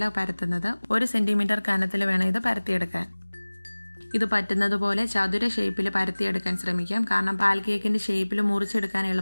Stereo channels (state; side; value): inverted; both; correlation -1.00